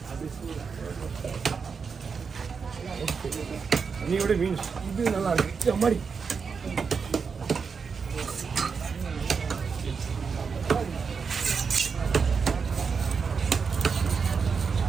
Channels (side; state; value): left; quieter; 5.6 dB